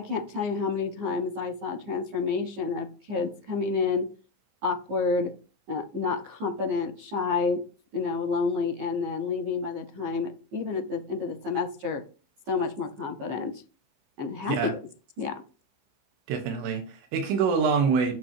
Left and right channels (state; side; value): late; left; 15 ms